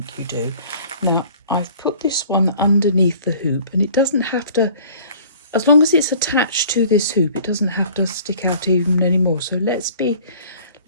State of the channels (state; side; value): inverted; both; correlation -0.50